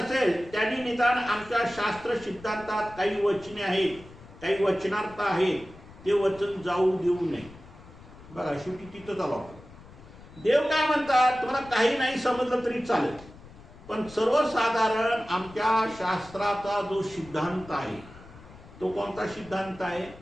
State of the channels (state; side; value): noise; left; rumble, 20 dB below the sound